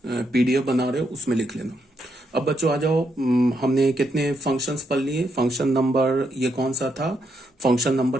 पीडीएफ बना रहे हो उसमें लिख लेना। अब बच्चों आ जाओ, हमने कितने फंक्शंस पढ़ लिए, फंक्शन नंबर ये कौन सा था, फंक्शन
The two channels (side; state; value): both; normal; correlation 0.79